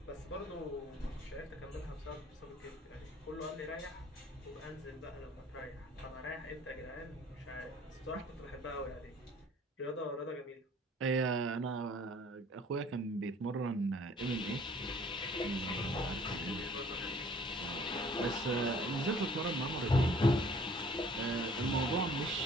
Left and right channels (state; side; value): normal; both; correlation 0.54